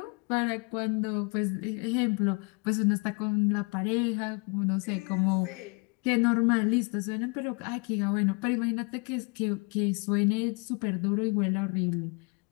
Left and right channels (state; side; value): quieter; right; 33.3 dB